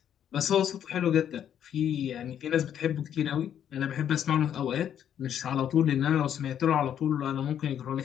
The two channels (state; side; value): quieter; right; 9.6 dB